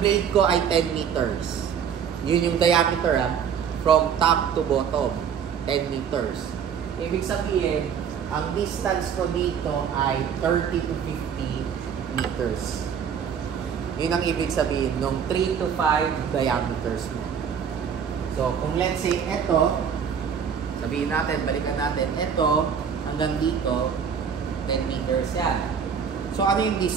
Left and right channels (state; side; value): quieter; left; 7.5 dB